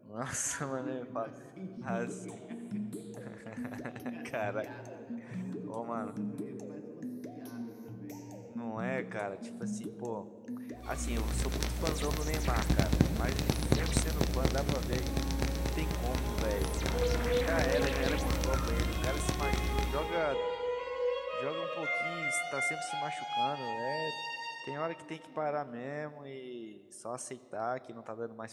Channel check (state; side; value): identical; both; correlation 1.00